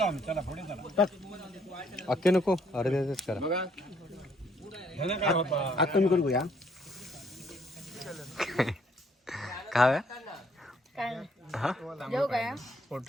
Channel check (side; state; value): both; normal; correlation 0.67